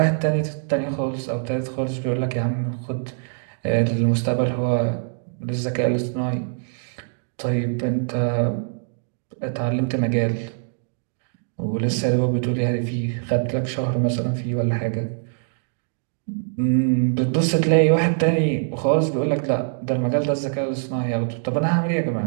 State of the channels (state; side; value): silent; left; digital silence